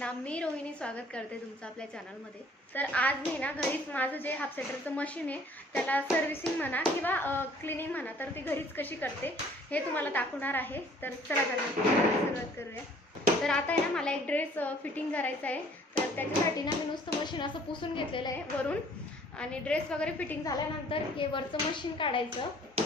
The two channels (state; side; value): normal; both; correlation 0.56